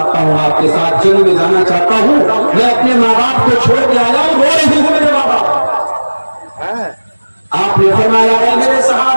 हूँ, आपके साथ जंग में जाना चाहता हूँ, मैं अपने माँ बाप को छोड़ के आया हूँ, रो रही हूँ मेरे माँ बाप। आपने फरमाया, है मेरे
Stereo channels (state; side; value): inverted; both; correlation -1.00